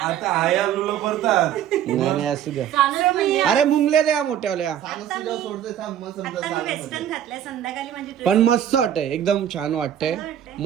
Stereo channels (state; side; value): quieter; left; 10.4 dB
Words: आता आया लुलो करतात. नाही नाही असू द्या. So मी अरे मुंगले द्या मोठ्यावल्या. सोडतोय थांब मग समजा आता मी वेस्टर्न घातलंय. संध्याकाळी माझी dress- पण मस्त वाटतंय. एकदम छान वाटतंय.